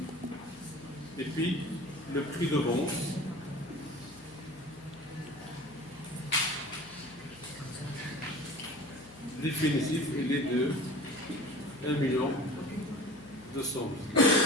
Et puis, le prix de vente, définitif, il est de 1 million 200 000.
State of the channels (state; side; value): noise; left; hum, 24 dB below the sound